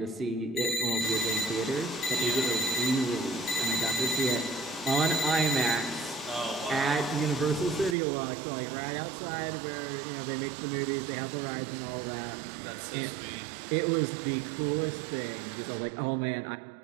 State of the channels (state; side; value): drops out; left; at 8.0 s